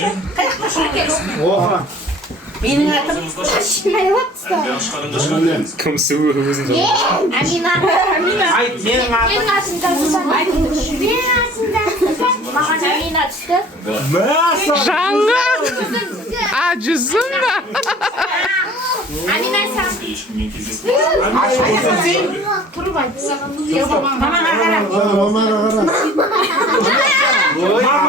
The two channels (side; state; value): both; normal; correlation 0.49